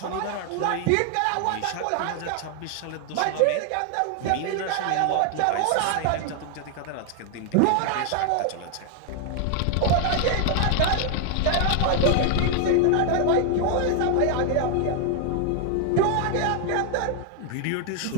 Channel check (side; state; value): both; different; correlation 0.00